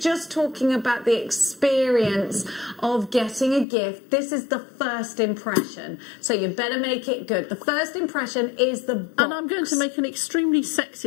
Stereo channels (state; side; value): drops out; right; at 3.7 s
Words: talking about the experience of getting a gift. This is the first impression, so you better make it good. The first impression is the box. And I'm going to make an extremely